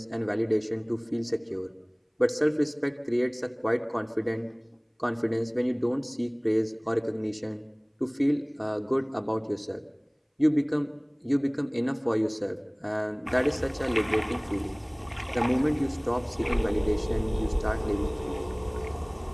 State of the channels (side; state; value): both; identical; correlation 1.00